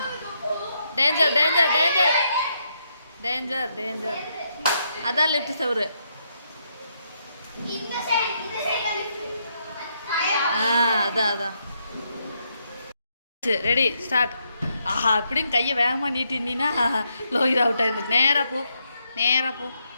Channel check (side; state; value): both; inverted; correlation -0.78